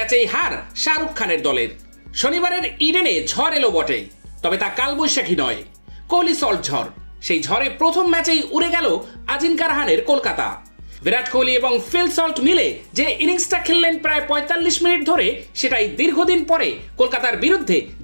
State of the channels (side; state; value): both; inverted; correlation -1.00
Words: হার শাহরুখ খানের দলের। শনিবারের ইডেনে ঝড় এলো বটে, তবে তা কালবৈশাখী নয়, কোহলি সল্ট ঝড়। সেই ঝড়ে প্রথম ম্যাচেই উড়ে গেল আজিঙ্কা রাহানের কলকাতা। বিরাট কোহলি এবং ফিল সল্ট মিলে যে ইনিংসটা খেললেন প্রায় ৪৫ মিনিট ধরে, সেটাই দীর্ঘদিন পরে কলকাতার বিরুদ্ধে